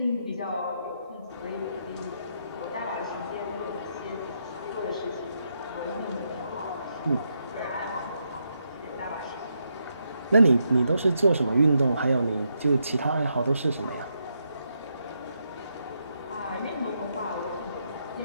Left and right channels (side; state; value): both; inverted; correlation -0.80